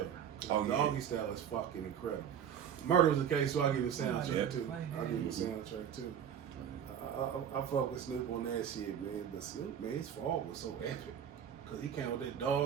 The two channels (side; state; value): left; quieter; 8.8 dB